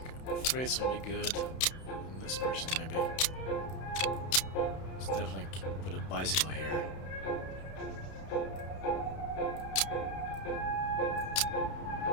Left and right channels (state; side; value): late; right; 31 ms